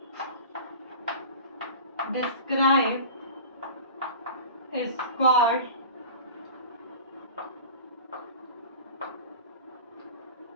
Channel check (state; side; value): inverted; both; correlation -0.37